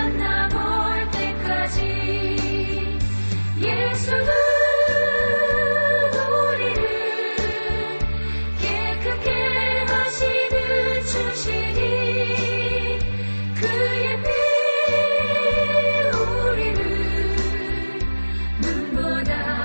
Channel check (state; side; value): inverted; both; correlation -1.00